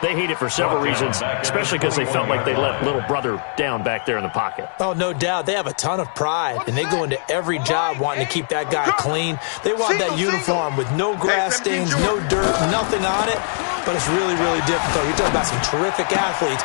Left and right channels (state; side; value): silent; right; 65 dB below the other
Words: they hate it for several reasons, especially because they felt like they let little brother down back there in the pocket. Oh, no doubt. They have a ton of pride, and they go into every job wanting to keep that guy clean. They want that uniform with no grass stains, no dirt, nothing on it. But it's really, really difficult. You're talking about some terrific athletes